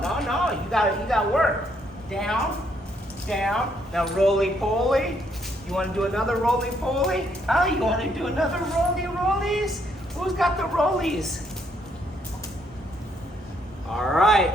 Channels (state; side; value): normal; both; correlation 0.72